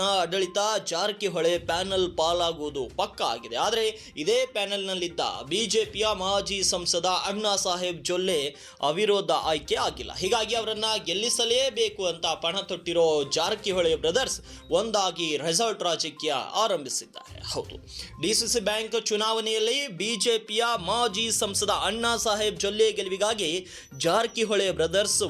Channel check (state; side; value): identical; both; correlation 1.00